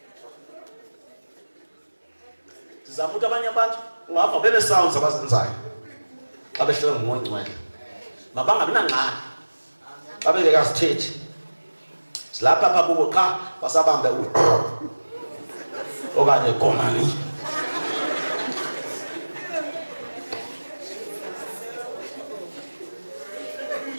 Sizama ukuthi abanye abantu ungava bene-sounds abazenzayo xa behlelwe ngumoya ongcwele. Mabangabi nangxaki xa bengekasithethi. Silapha apha kubo qha basabambe okanye "Komani."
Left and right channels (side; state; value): both; inverted; correlation -1.00